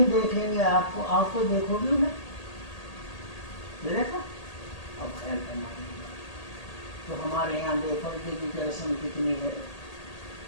دیکھیں گے آپ کو، آپ کو دیکھو گی انہیں، دیکھا؟ اب خیال کرنا ہے۔ تو ہمارے یہاں بے پردے کی رسم کتنی ہے،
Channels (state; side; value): late; right; 1.8 ms